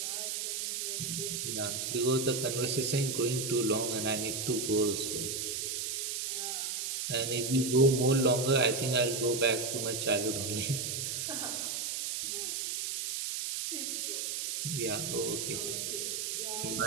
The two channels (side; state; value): right; noise; hiss, 2 dB below the sound